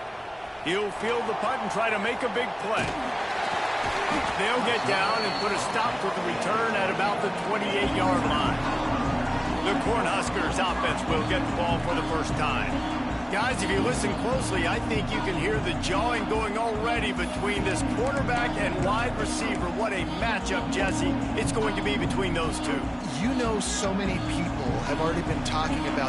He'll field the punt and try to make a big play. They'll get down and put a stop to the return at about the 28-yard line. The Cornhuskers offense will get the ball for the first time. Guys, if you listen closely, I think you can hear the jawing going already between this quarterback and wide receiver. What a matchup, Jesse, it's going to be between those two. You know, so many people have already been talking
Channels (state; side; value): identical; both; correlation 1.00